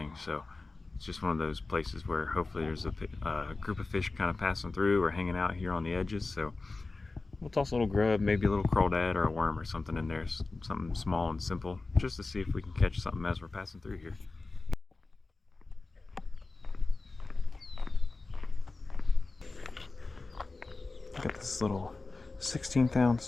so it's just one of those places where hopefully there's a group of fish kind of passing through or hanging out here on the edges. So we'll toss a little grub, maybe a little crawdad or a worm or something in there, something small and simple, just to see if we can catch something as we're passing through here. Got this little 16th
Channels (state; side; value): quieter; right; 3.6 dB